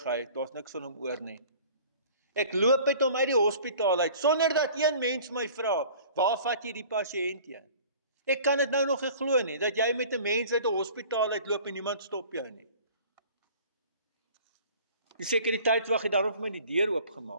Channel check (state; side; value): inverted; both; correlation -0.47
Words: hy, daar's niks van hom oor nie. Ek loop met hom uit die hospitaal uit, sonder dat een mens my vra, waar vat jy die pasiënt heen? Ek kan dit nou nog nie glo nie, dat jy met 'n mens uit 'n hospitaal uitloop en niemand stop jou nie. Die sekuriteitswag het daarom vir my die deur